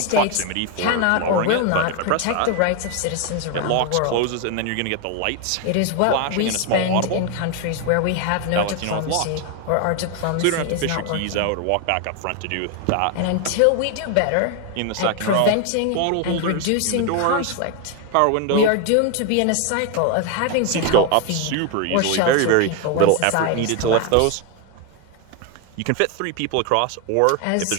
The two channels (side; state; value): both; different; correlation 0.01